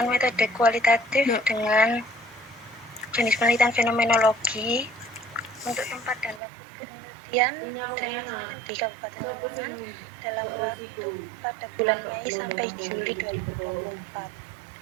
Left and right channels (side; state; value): left; drops out; at 6.4 s